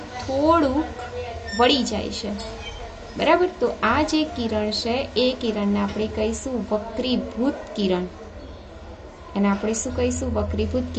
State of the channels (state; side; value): identical; both; correlation 1.00